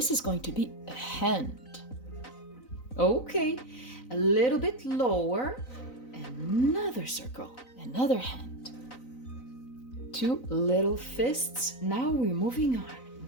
is going to be a hand. Okay, a little bit lower. Another circle, another hand. Two little fists. Now we're moving on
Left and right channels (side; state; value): right; late; 4.0 ms